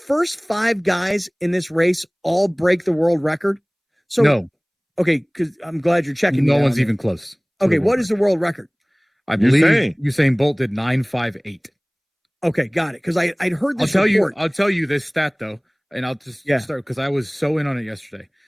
5 guys in this race all break the world record? So no. Okay, because I'm glad you're checking. No one's even close. Okay, what is the world record? I believe Usain Bolt did 9.58. Okay, got it. Because I'd heard this. I'll tell you this stat though, and I'll just start because I was so in on it yesterday.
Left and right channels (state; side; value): identical; both; correlation 1.00